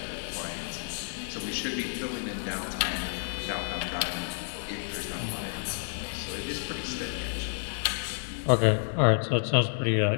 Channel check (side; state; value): right; silent; digital silence